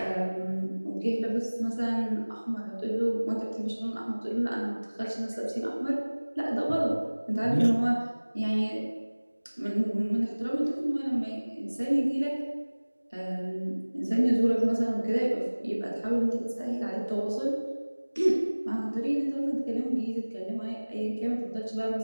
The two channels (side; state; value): both; inverted; correlation -1.00